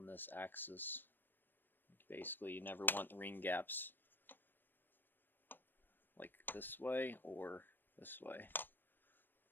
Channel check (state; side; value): late; right; 0.094 ms